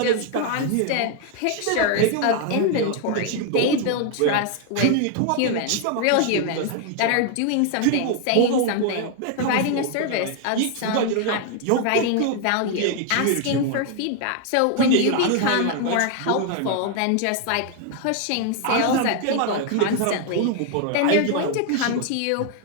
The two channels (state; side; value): different; both; correlation 0.00